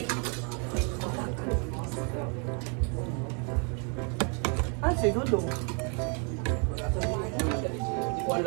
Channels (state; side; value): quieter; left; 37.7 dB